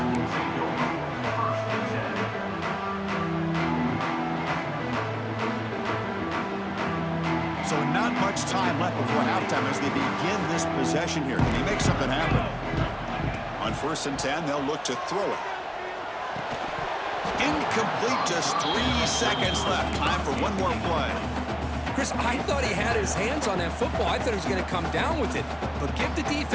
So not much time left before halftime as they begin this possession here. Can they make something happen? On 1st and 10, they'll look to throw it. Incomplete, just 3 seconds left. Time for one more play. Chris, I thought he had his hands on that football. I thought he was going to come down with it. But give the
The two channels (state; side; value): identical; both; correlation 1.00